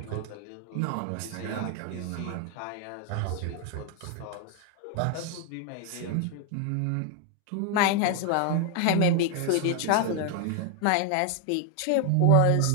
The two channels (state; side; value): different; both; correlation 0.00